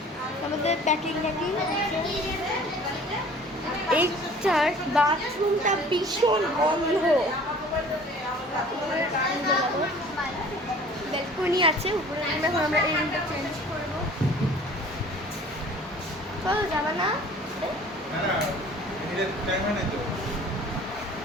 আমাদের প্যাকিং এইটার বাথরুমটা ভীষণ বন্ধ। ব্যালকনি আছে উপরে। এখন আমরা এই রুমটা চেঞ্জ করবো। চলো যাবা না?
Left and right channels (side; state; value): both; normal; correlation 0.48